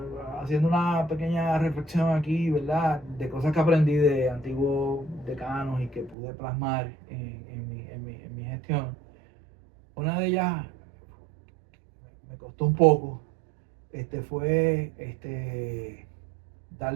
haciendo una pequeña reflexión aquí, ¿verdad? De cosas que aprendí de antiguos decanos y que pude plasmar en mi gestión. Una de ellas me costó un poco, fue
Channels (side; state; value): left; drops out; at 6.2 s